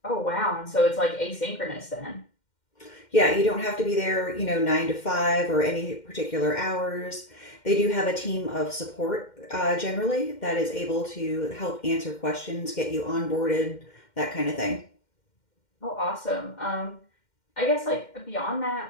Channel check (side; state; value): right; late; 2.1 ms